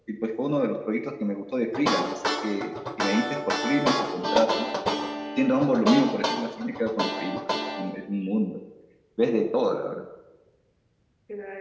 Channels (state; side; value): identical; both; correlation 1.00